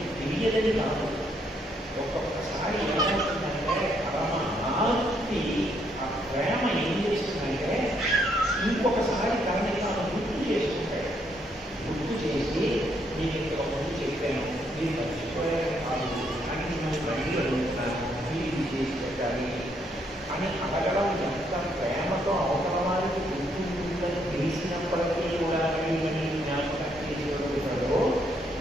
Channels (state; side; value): normal; both; correlation 0.73